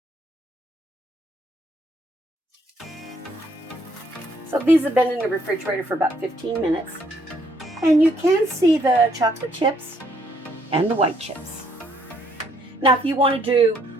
So these have been in the refrigerator for about 15 minutes, and you can see the chocolate chips and the white chips. Now, if you want to do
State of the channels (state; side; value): normal; both; correlation 0.68